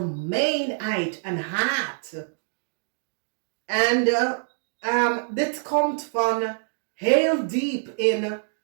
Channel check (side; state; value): left; silent; digital silence